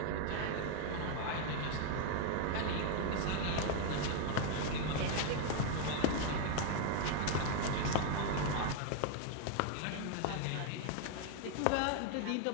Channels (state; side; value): different; both; correlation 0.00